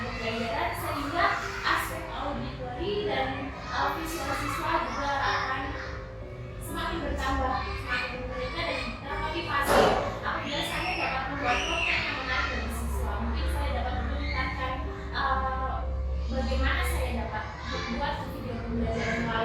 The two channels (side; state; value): both; identical; correlation 1.00